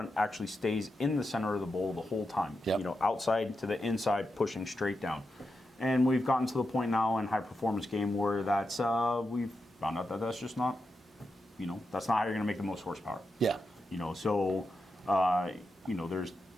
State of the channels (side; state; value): both; normal; correlation 0.88